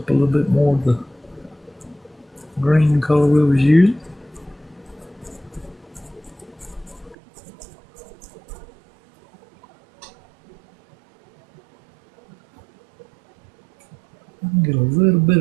a little bit more of the green color we was using. Get a little bit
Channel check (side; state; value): left; drops out; at 7.2 s